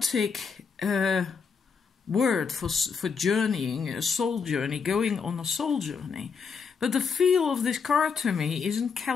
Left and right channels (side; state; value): right; quieter; 5.7 dB